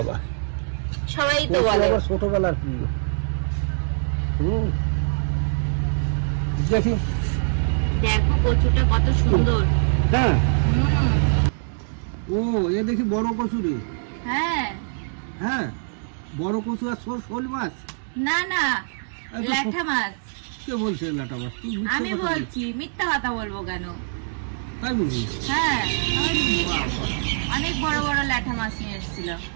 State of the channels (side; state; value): left; silent; digital silence